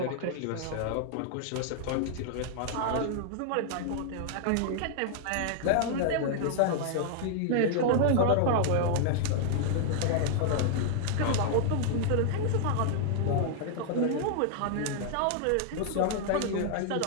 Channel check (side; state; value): both; different; correlation -0.01